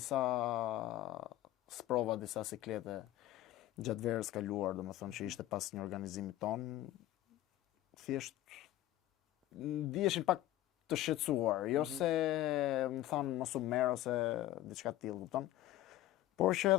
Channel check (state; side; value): quieter; right; 14.5 dB